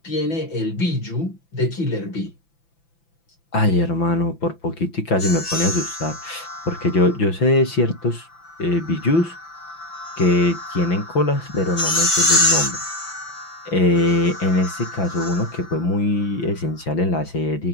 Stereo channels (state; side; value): late; right; 5.9 ms